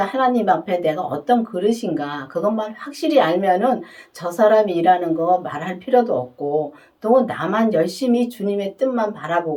하나님 앞에 내가 어떤 그릇인가 그것만 확실히 알면은 저 사람이 일하는 거 말할 필요도 없고 또 나만 열심히 주님의 뜻만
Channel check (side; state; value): both; identical; correlation 1.00